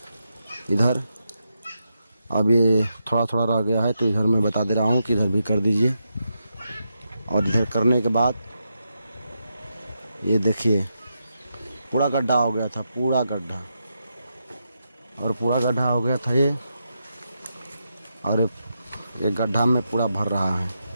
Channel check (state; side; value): inverted; both; correlation -0.84